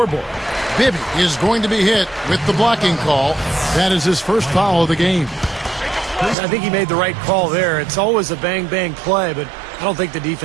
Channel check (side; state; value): left; drops out; at 6.4 s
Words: Bibby is going to be hit with the blocking call. That is his first foul of the game. I think he made the right call there. It's always a bang-bang play, but I don't think the